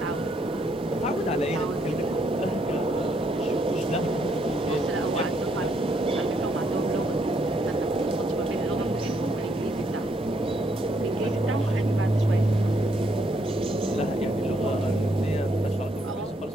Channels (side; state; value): both; normal; correlation 0.73